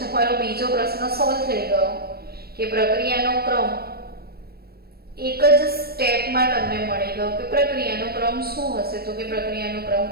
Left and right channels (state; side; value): late; left; 0.45 ms